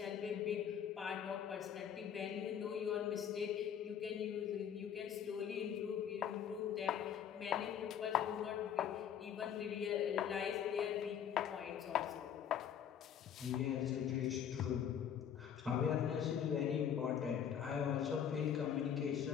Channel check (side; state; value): right; quieter; 8.7 dB